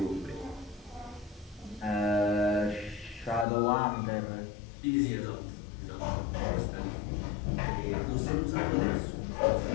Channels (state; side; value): drops out; right; at 3.5 s